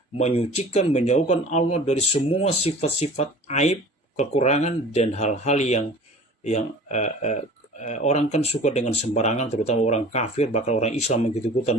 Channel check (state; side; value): normal; both; correlation 0.43